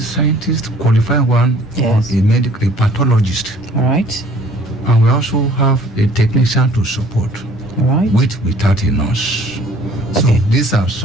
scientist, qualified one, or a pathologist. All right. And we also have a technician to support, without a nurse. So these are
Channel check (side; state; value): both; normal; correlation 0.55